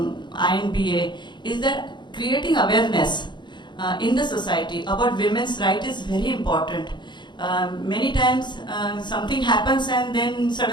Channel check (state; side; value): late; right; 0.22 ms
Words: is that creating awareness in the society about women's rights is very important. Many times something happens and then